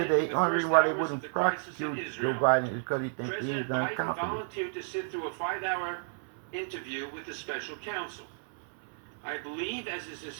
managing the only first reason why they hours of wouldn't the crisis in prosecute Joe Israel, Biden is because he thinks he President is Biden incompetent. volunteered to sit through a 5-hour interview with the special counsel. I believe, as is his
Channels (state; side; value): silent; left; 57 dB below the other